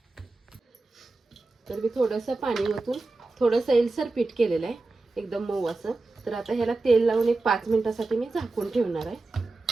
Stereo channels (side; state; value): left; quieter; 3.4 dB